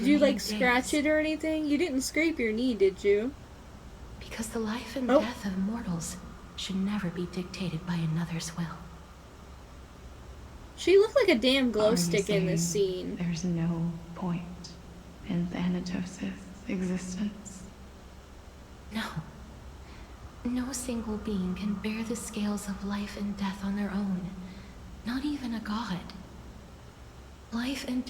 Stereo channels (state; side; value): identical; both; correlation 1.00